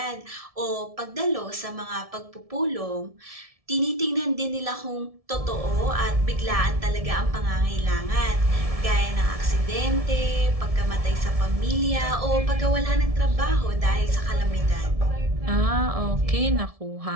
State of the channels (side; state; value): left; late; 1.7 ms